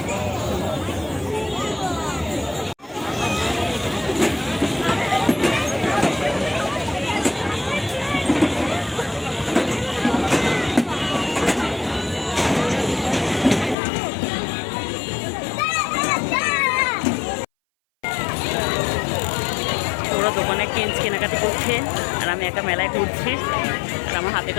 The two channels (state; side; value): drops out; right; at 13.8 s